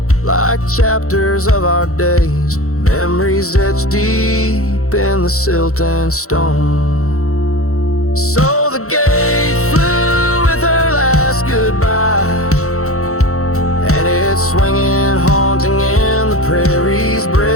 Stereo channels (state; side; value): late; right; 0.64 ms